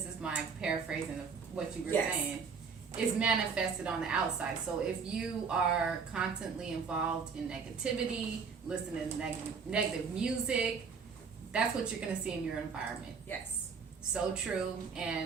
is my paraphrasing of what you were saying, is manifested on the outside. So if you are constantly involved in negativity, listening to negative music, that's what you're going to see in your environment. Yes. So true.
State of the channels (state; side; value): quieter; left; 5.6 dB